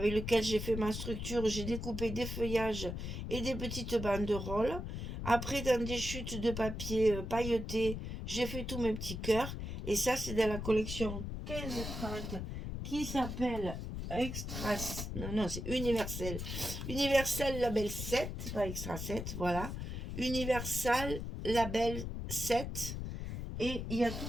lequel j'ai fait ma structure. J'ai découpé des feuillages et des petites banderoles. Après, dans des chutes de papier pailleté, j'ai fait tous mes petits cœurs. Et ça, c'est dans la collection 15-30 qui s'appelle Extra... Non, c'est Universel. Universel Label 7, pas Extra 7, voilà. Universal Label 7. Et il y a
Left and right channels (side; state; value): left; noise; rumble, 5 dB below the sound